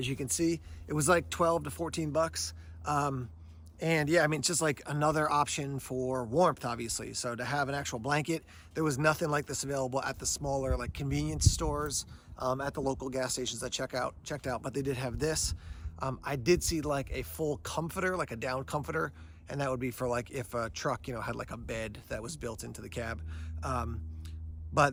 you can see, it was like 12 to 14 bucks. And yeah, it's just like another option for warmth, obviously. So to have an actual blanket, there was nothing like this available at the smaller like convenience stores, at the local gas stations I checked out, but they did have this. I did see like a full comforter, like a down comforter, and that would be for like if a truck, had like a bed that was built into the cab.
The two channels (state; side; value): identical; both; correlation 1.00